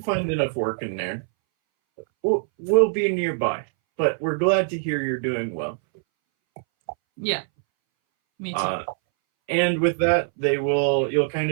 find enough work in Nairn. We'll be nearby, but we're glad to hear you're doing well. Yeah. Me too. And with that, you'll kind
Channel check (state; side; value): silent; left; 62 dB below the other